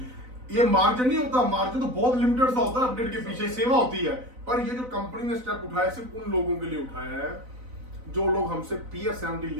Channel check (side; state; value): left; late; 4.0 ms